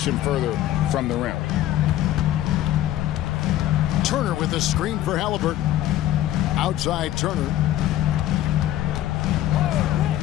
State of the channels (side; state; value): right; quieter; 13.4 dB